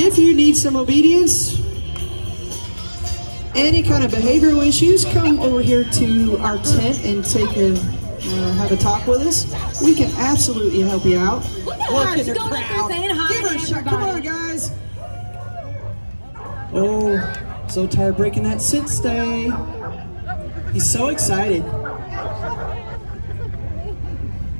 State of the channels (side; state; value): both; inverted; correlation -1.00